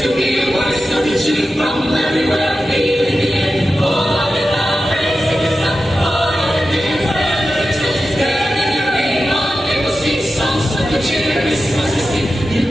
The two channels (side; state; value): both; normal; correlation 0.92